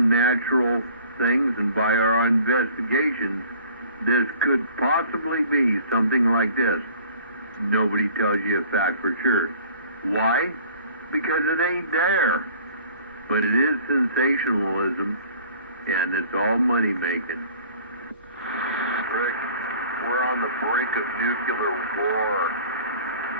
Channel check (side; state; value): both; inverted; correlation -0.50